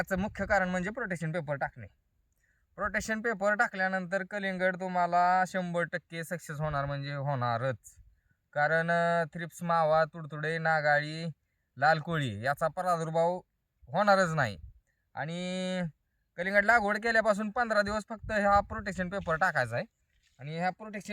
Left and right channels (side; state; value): both; identical; correlation 1.00